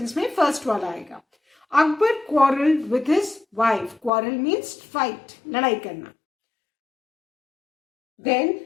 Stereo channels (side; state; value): right; drops out; at 4.1 s